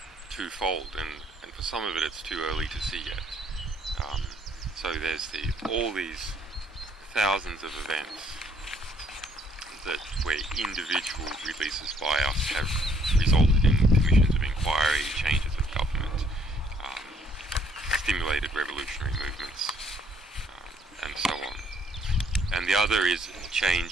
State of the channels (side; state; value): both; normal; correlation 0.65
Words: twofold, and for some of it it's too early to see yet. So there's all these thousands of events that where individual releases by us have resulted in commissions of inquiry, changes of government, stimulated revolutionary movements, and so on. And the other is a